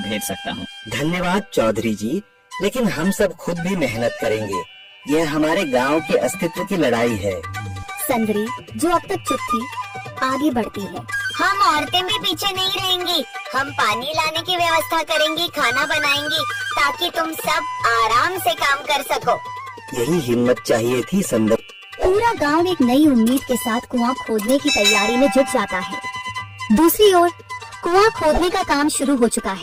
सकता हूँ। धन्यवाद चौधरी जी, लेकिन हम सब खुद भी मेहनत करेंगे। यह हमारे गांव के अस्तित्व की लड़ाई है। संदरी, जो अब तक चुप थी, आगे बढ़ती है। हम औरतें भी पीछे नहीं रहेंगी। हम पानी लाने की व्यवस्था करेंगी, खाना बनाएंगी, ताकि तुम सब आराम से काम कर सको। यही हिम्मत चाहिए थी संदर। पूरा गांव एक नई उम्मीद के साथ कुआं खोदने की तैयारी में जुट जाता है। दूसरी ओर कुआं खोदने का काम शुरू हो चुका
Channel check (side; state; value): both; identical; correlation 1.00